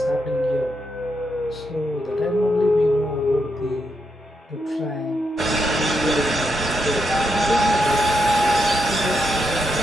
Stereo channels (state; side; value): normal; both; correlation 0.81